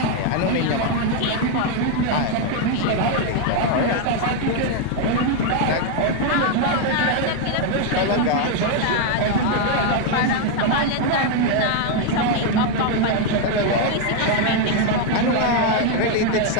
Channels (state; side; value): different; both; correlation 0.01